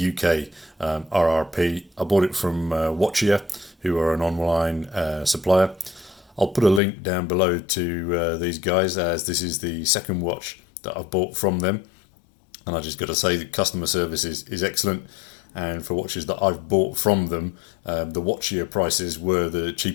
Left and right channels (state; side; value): drops out; right; at 6.8 s